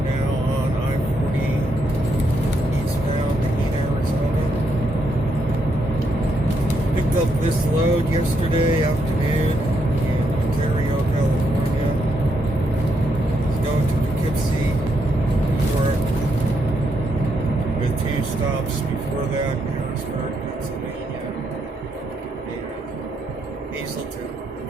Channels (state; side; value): normal; both; correlation 0.79